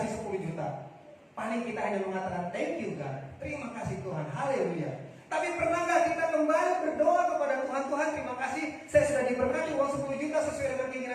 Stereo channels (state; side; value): identical; both; correlation 1.00